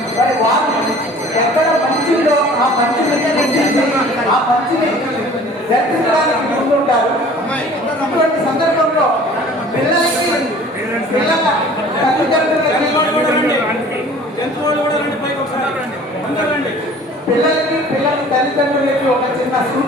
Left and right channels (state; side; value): normal; both; correlation 0.48